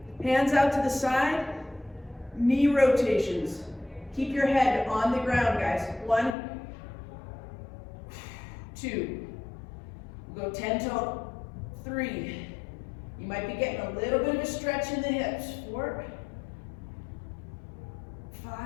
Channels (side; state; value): right; drops out; at 6.4 s